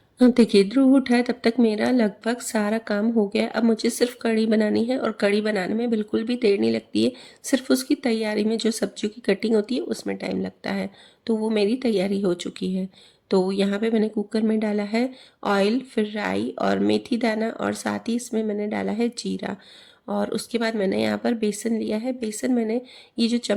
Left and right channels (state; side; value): identical; both; correlation 1.00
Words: हाँ, देखिए, ध्रुव उठा है तब तक मेरा लगभग सारा काम हो गया। अब मुझे सिर्फ कढ़ी बनानी है, और कढ़ी बनाने में बिल्कुल भी देर नहीं लगती है। सिर्फ उसकी तैयारी में, जो सब्जियों की कटिंग होती है उसमें टाइम लगता है। तो वो मेरी तैयारी हो चुकी है। तो यहाँ पे मैंने कुकर में डाला है ऑयल, फिर राई और मेथी दाना, और साथ ही इसमें मैंने डाला है जीरा। और उसके बाद मैंने यहाँ पर बेसन लिया है। बेसन मैंने, ये जो